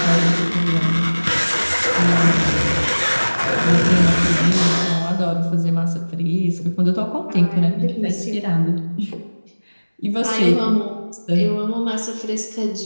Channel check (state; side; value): inverted; both; correlation -1.00